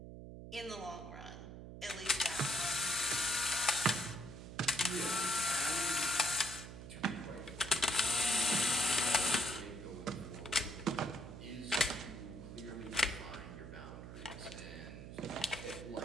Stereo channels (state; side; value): noise; right; hum, 11 dB below the sound